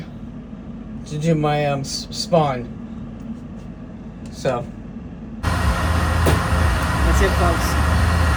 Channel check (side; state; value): both; identical; correlation 1.00